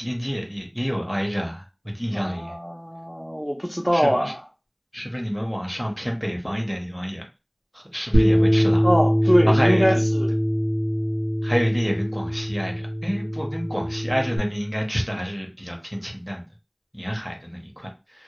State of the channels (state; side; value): identical; both; correlation 1.00